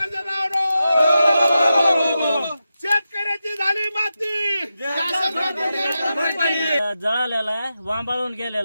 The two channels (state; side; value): inverted; both; correlation -0.90